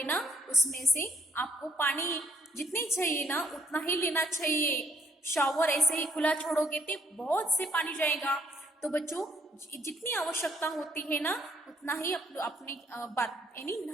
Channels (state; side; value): normal; both; correlation 0.67